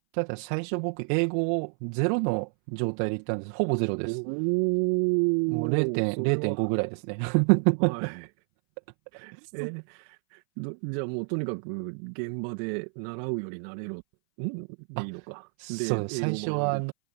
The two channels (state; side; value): silent; left; 59 dB below the other